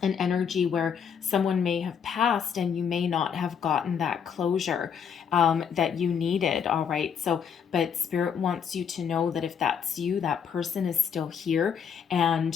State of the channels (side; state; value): right; quieter; 7.3 dB